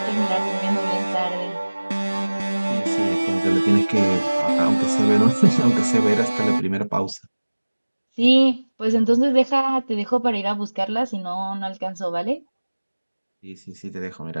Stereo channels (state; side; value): inverted; both; correlation -1.00